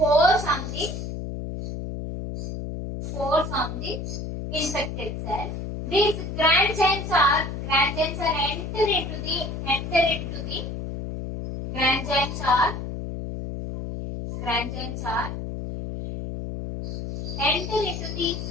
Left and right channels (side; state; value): left; noise; hum, 6 dB below the sound